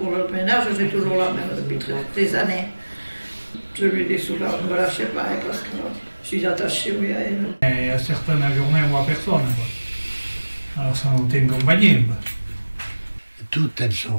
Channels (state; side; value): inverted; both; correlation -1.00